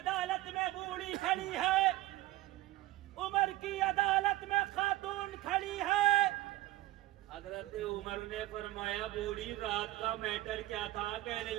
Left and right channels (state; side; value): quieter; left; 17.0 dB